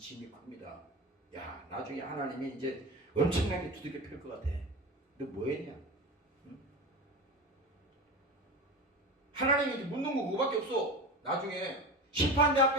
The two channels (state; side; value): normal; both; correlation 0.28